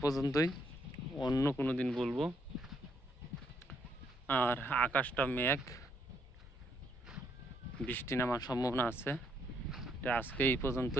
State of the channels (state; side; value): normal; both; correlation 0.73